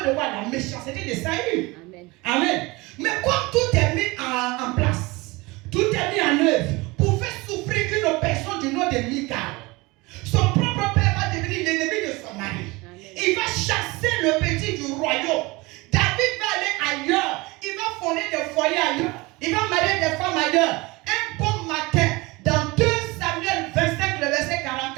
de quoi? La méchanceté de Saül. Amen. Amen. Mais comme tout est mis en place, tout est mis en œuvre pour faire souffrir une personne du nom de Michal, son propre père va devenir l'ennemi de son mari. Amen. Il va chasser le petit du royaume. David va aller ailleurs. Il va fonder des foyers ailleurs. Il va marier des femmes ailleurs. Un bon matin, dans 2 Samuel 25, le verset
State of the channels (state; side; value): quieter; left; 23.3 dB